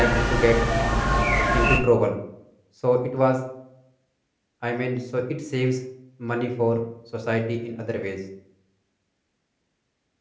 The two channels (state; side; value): identical; both; correlation 1.00